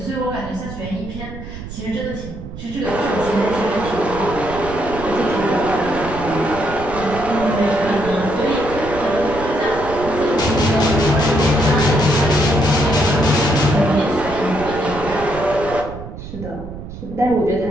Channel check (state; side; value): noise; right; rumble, 11 dB below the sound